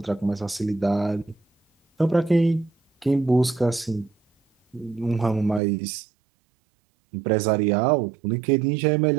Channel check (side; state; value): left; drops out; at 5.6 s